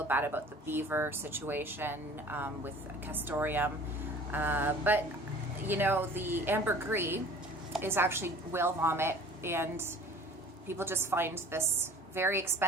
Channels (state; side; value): normal; both; correlation 0.47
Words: bad about the beaver situation with castoreum. But, the ambergris is actually whale vomit, and people just find this very